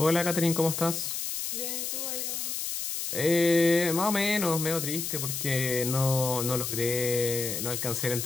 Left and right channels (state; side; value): noise; left; hiss, 3 dB below the sound